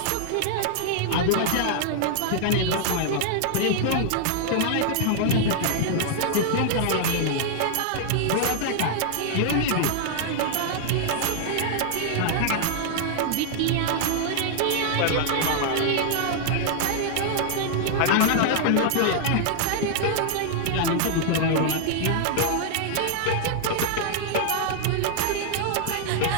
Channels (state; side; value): different; both; correlation -0.01